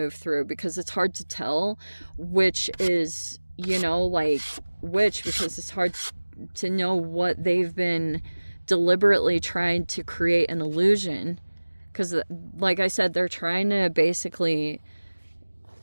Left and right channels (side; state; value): both; inverted; correlation -1.00